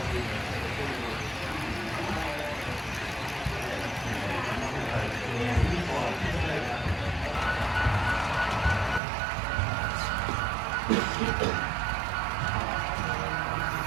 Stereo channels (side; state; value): left; drops out; at 9.0 s